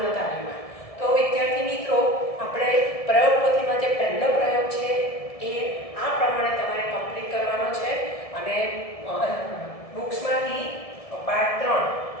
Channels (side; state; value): right; late; 1.7 ms